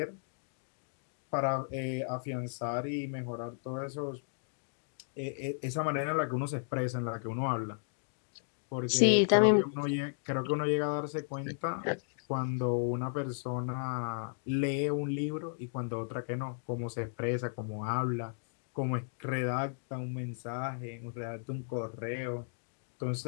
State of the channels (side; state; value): right; silent; digital silence